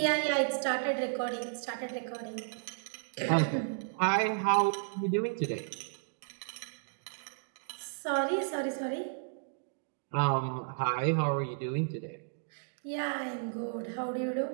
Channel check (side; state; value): left; silent; digital silence